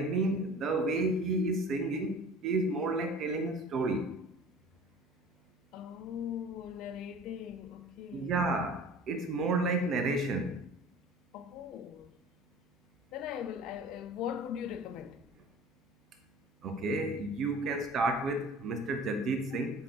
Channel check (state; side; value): normal; both; correlation 0.43